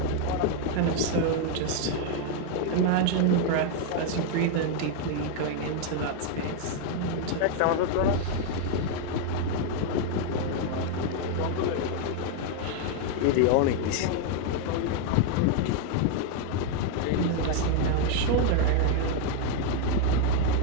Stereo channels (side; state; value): both; different; correlation 0.00